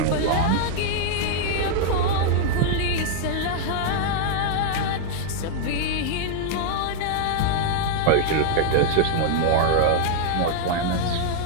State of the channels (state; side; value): different; both; correlation -0.01